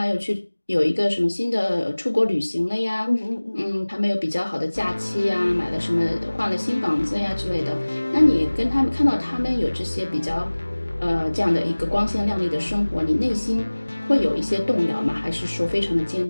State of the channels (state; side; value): inverted; both; correlation -1.00